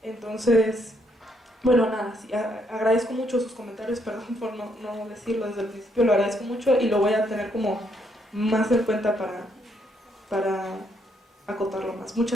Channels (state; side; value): normal; both; correlation 0.73